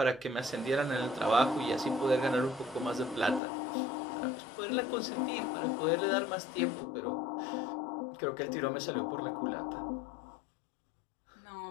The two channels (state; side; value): drops out; right; at 3.4 s